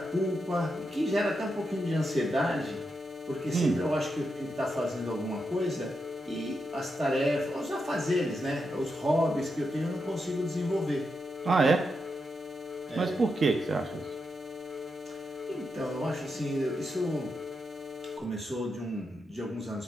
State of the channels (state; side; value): normal; both; correlation 0.85